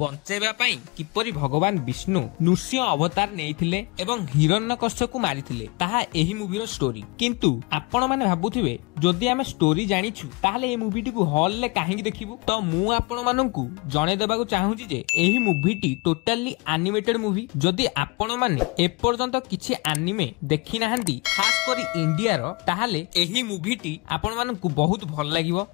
पई किपरि भगवान विष्णु नृसिंह अवतार नेइथिले एवं हिरण्यकश्यप को मारिथिले ताहा एही मूवीर स्टोरी। किंतु आपण माने भाबुथिबे जदि आमे स्टोरी जानिछु ताहाले ए मूवीटी को हॉल रे काहेकि देखिबु। तो मु आपण मानकु जणे देबाकू चाहूची जे एही मूवीटी टोटली एनिमेटेड मूवी। जदि आपण माने एपर्यंत किछि एनिमे देखि नाहंती खास करी इंडिया रो ताहाले एही मूवीटी आपण मानकु बहुत भल लागिवो।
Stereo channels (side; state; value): right; quieter; 27.5 dB